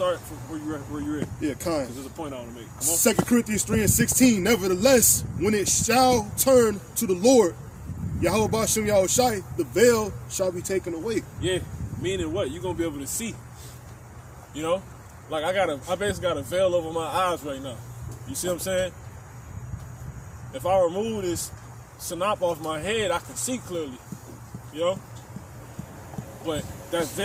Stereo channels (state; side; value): identical; both; correlation 1.00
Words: from where you at. Yeah, kind. Because there's a point I want to make. 2 Corinthians 3 and 16, "Nevertheless, when it shall turn to the Lord Yahweh Ba'ashem Yahushai, the veil shall be taken away." Yeah, meaning what? You're going to be able to see. You know? Like I basically got a veil over my eyes right now. You see what I'm saying? If I remove this sanop off my head, I can see clearly. You know? But that